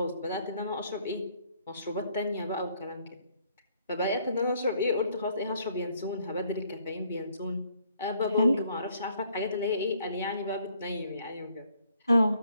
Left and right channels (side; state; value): both; inverted; correlation -0.66